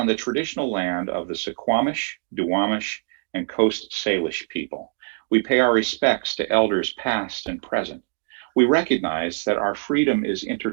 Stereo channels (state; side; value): silent; left; digital silence